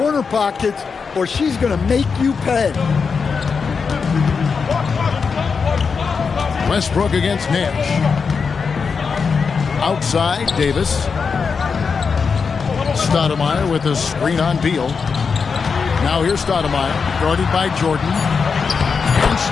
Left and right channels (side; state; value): right; quieter; 5.5 dB